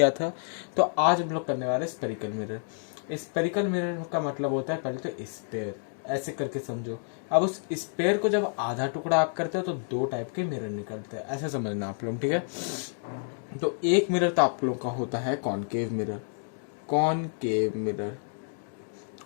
था, तो आज हम लोग करने वाले स्पेरिकल मिरर। स्पेरिकल मिरर का मतलब होता है, पहले तो स्पेयर, ऐसे करके समझो। अब उस स्पेयर को जब आधा टुकड़ा आप करते हो तो दो टाइप के मिरर निकलते हैं, ऐसे समझना आप लोग, ठीक है। तो एक मिरर तो आप लोग का होता है कॉनकेव मिरर, कॉनकेव मिरर,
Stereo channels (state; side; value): silent; right; digital silence